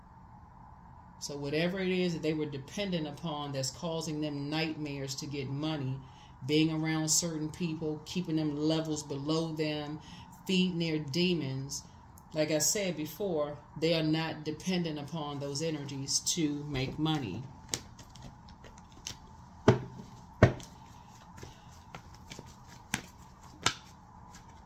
So whatever it is that they were dependent upon that's causing them nightmares to get money, being around certain people, keeping them levels below them, feeding their demons, like I said before, they are not dependent upon those energies to make money.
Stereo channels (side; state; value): both; identical; correlation 1.00